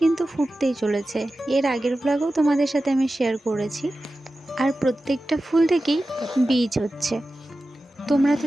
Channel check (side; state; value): both; normal; correlation 0.94